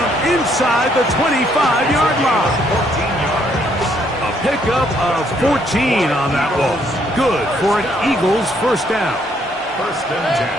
inside the 25-yard line. 14 yards. A pickup of 14 on that ball. Good for an Eagles first down. 1st and 10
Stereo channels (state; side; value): normal; both; correlation 0.69